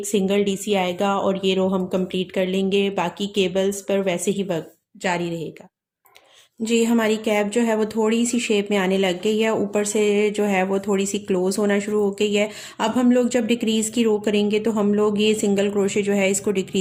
सिंगल डीसी आएगा, और ये रो हम कंप्लीट कर लेंगे। बाकी केबल्स पर वैसे ही वर्क जारी रहेगा। जी, हमारी कैप जो है वो थोड़ी सी शेप में आने लग गई है, ऊपर से जो है वो थोड़ी सी क्लोज होना शुरू हो गई है। अब हम लोग जब डिक्रीज़ की रो करेंगे तो हम लोग ये सिंगल क्रोशे जो है इसको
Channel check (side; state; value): both; identical; correlation 1.00